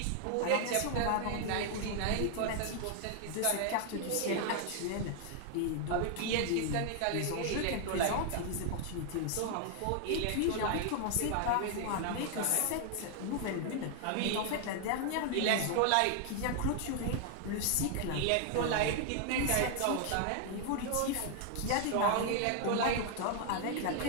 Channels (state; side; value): different; both; correlation 0.00